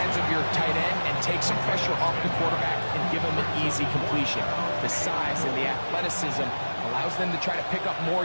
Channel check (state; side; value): inverted; both; correlation -1.00